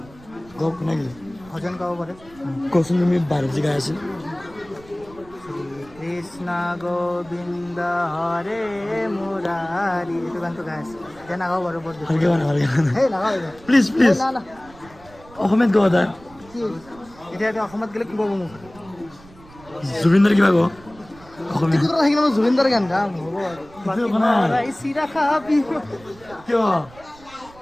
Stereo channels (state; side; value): noise; right; rumble, 23 dB below the sound